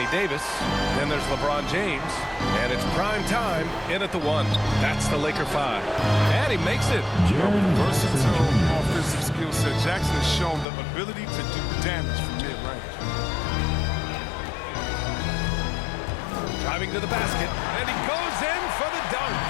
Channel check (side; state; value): right; drops out; at 10.7 s